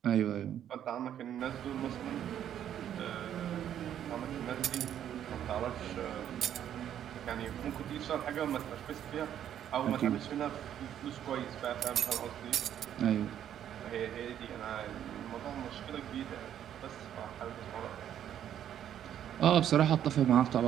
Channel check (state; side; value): quieter; left; 10.3 dB